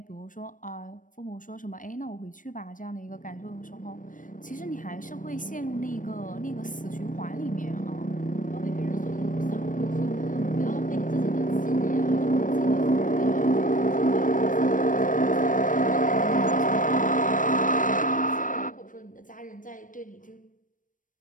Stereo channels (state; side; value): late; right; 0.38 ms